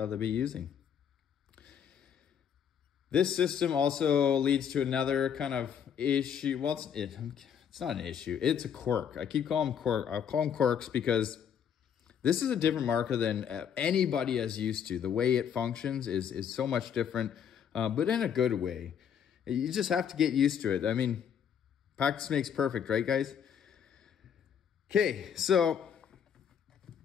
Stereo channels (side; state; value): right; quieter; 8.2 dB